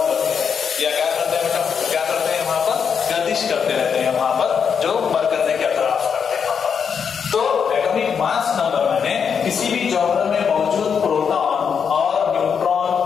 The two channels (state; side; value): quieter; right; 6.8 dB